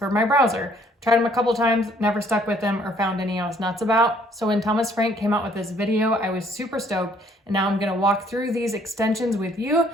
my browser. Tried them a couple times, never stuck with them or found any I was nuts about. So when Thomas Frank came out with this video, I was super stoked, and now I'm gonna walk through these extensions with you.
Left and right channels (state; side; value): normal; both; correlation 0.62